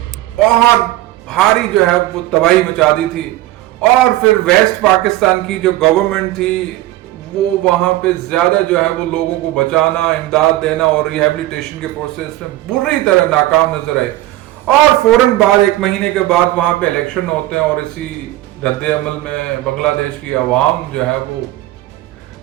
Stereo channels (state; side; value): quieter; left; 16.2 dB